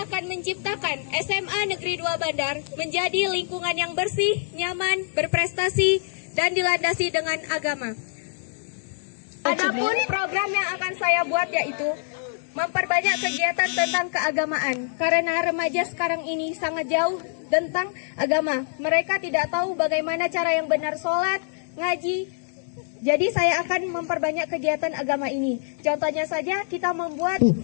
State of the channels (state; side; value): silent; right; digital silence